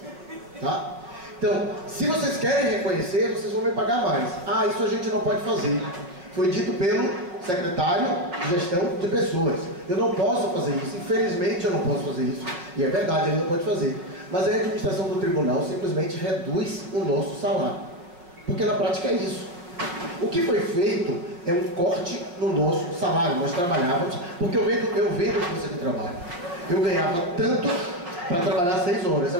tá? Então, se vocês querem reconhecer, vocês vão me pagar mais. Isso a gente não pode fazer. Foi dito pelo secretário de gestão de pessoas. Eu não posso fazer isso, infelizmente eu não posso fazer isso. E é verdade, ele não pode fazer. Mas a administração do tribunal simplesmente reduz o nosso salário. Porque na prática é isso. O que foi feito é um corte no nosso salário. Nós trabalhávamos, porque eu vendo força de trabalho. Eu ganhava tanto para trabalhar 6 horas,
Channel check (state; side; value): late; left; 5.6 ms